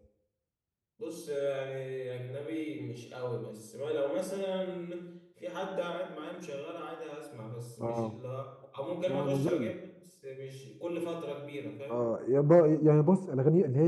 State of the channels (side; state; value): both; identical; correlation 1.00